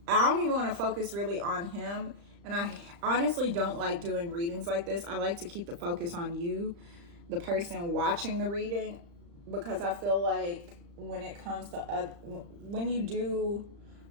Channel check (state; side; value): late; left; 35 ms